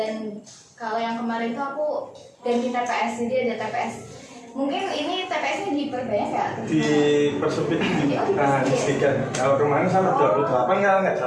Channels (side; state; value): both; identical; correlation 1.00